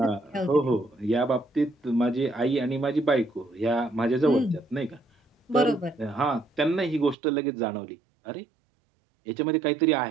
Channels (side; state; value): left; drops out; at 7.2 s